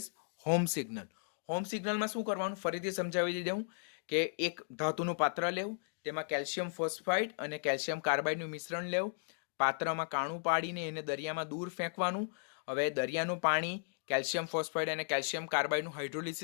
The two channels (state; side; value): silent; right; digital silence